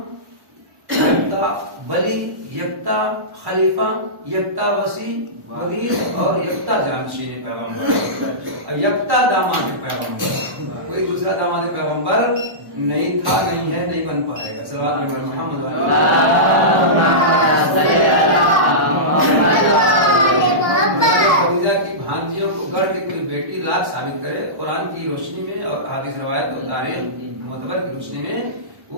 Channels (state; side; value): late; left; 1.1 ms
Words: یکتا ولی یکتا خلیفہ یکتا وسیع وزیر اور یکتا جانشین پیغمبر اور یکتا داماد پیغمبر کوئی دوسرا داماد پیغمبر نہیں تھا نہیں ہے نہیں بن پائے گا صلوات علی محمد خدیجہ کی بھانجیوں کو گھر کے کوئی بیٹی لاکھ ثابت کرے قرآن کی روشنی میں اور حدیث روایت اور تاریخ معتبر کی روشنی میں